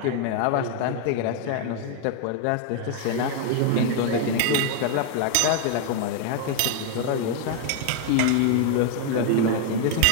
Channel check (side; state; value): both; different; correlation 0.00